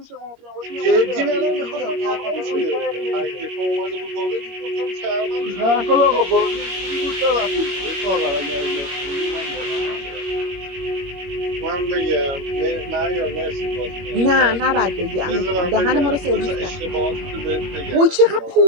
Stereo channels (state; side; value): late; left; 22 ms